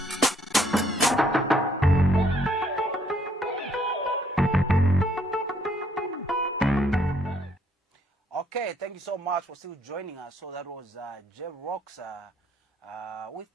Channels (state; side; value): normal; both; correlation 0.67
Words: Okay, thank you so much for still joining us. So that was J-Rocks with